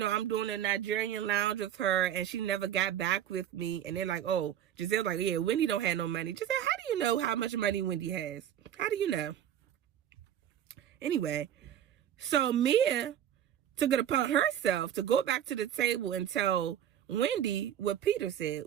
doing a Nigerian lounge with her, and she never got back with me. And they're like, oh, Giselle's like, yeah, Wendy don't have no money. Giselle, how do you know how much money Wendy has? How do you know? Anyway, so Mia took it upon herself to go back to the table and tell Wendy what Peter said.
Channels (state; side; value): quieter; left; 10.5 dB